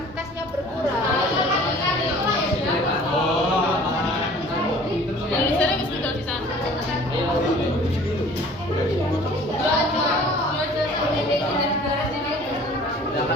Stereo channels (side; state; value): both; normal; correlation 0.48